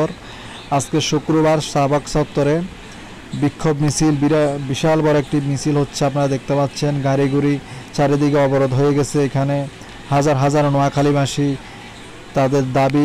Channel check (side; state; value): both; identical; correlation 1.00